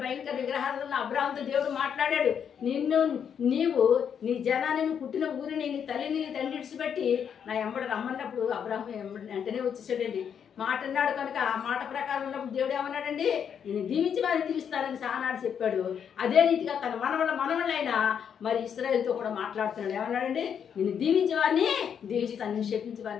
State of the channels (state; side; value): quieter; right; 7.9 dB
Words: భయంకర విగ్రహాలను అబ్రాహాంతో దేవుడు మాట్లాడాడు. నీవు నీ జనాన్ని, పుట్టిన ఊరిని, నీ తల్లిని, నీ తండ్రి విడిచిపెట్టి నా ఎంబడి రమ్మన్నప్పుడు అబ్రాహాం వెంటనే వచ్చేసాడండి. మాట అన్నాడు కనుక ఆ మాట ప్రకారం ఉన్నప్పుడు దేవుడు ఏమన్నాడండి, నేను దీవించి వారిని దీవిస్తానని ఆనాడు చెప్పాడు. అదే రీతిగా తన మనవళ్ళైనా మరి ఇశ్రాయేలుతో కూడా మాట్లాడుతున్నాడు. ఏమన్నాడండి, నేను దీవించే వారిని దీవిస్తాను, నేను శపించే